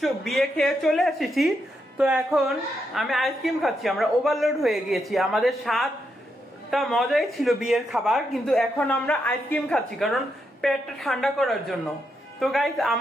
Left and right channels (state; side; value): normal; both; correlation 0.82